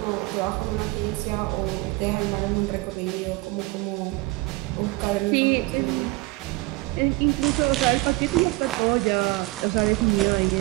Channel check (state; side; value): quieter; left; 22.1 dB